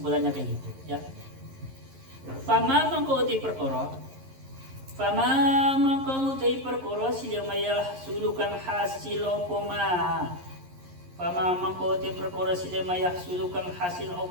kayak gitu, ya. Fama mangkauti perkara silamaya sulukan hasil opoma. Fama mangkauti perkara silamaya sulukan hasil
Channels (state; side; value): late; left; 11 ms